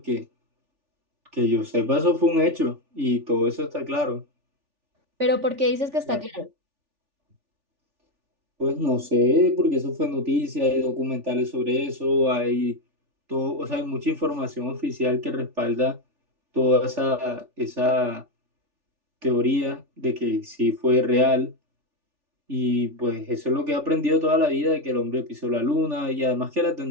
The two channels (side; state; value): left; late; 3.4 ms